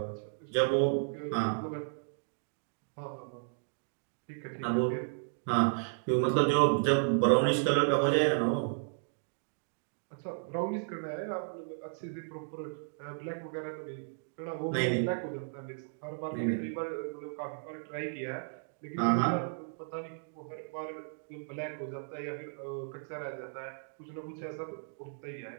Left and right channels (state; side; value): silent; left; digital silence